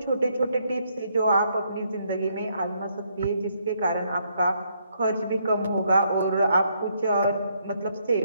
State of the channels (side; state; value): both; inverted; correlation -0.73